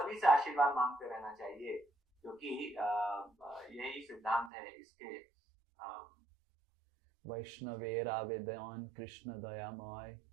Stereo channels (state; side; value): drops out; left; at 4.5 s